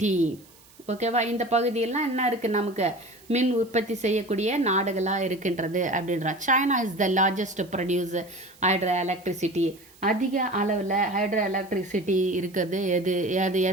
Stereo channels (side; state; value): right; noise; hiss, 26 dB below the sound